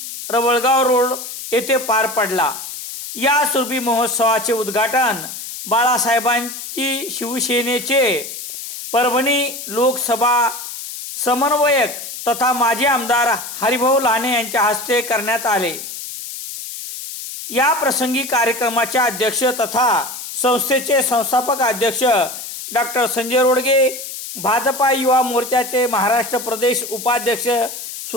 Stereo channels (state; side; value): noise; left; hiss, 9 dB below the sound